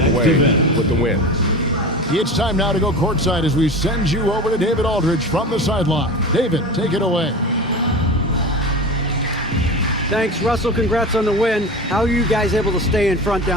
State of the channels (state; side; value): normal; both; correlation 0.30